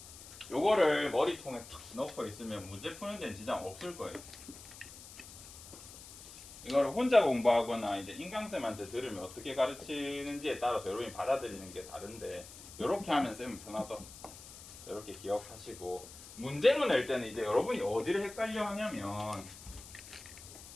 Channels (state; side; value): noise; left; hiss, 16 dB below the sound